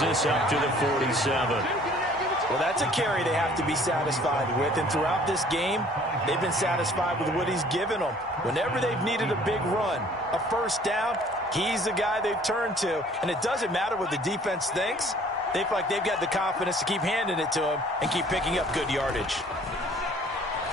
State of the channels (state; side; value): normal; both; correlation 0.55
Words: this up to the 47. Well, that's a carry they have to be satisfied with. And throughout this game, they've been satisfied with what he's given them. Whenever they've needed a big run, a first down, he's the guy they've turned to. And it doesn't matter what the defense thinks. They feel like they've got the confidence to keep handing it to him and keep picking up good yardage.